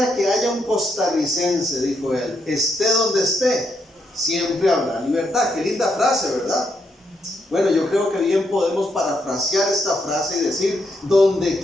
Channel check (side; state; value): both; normal; correlation 0.79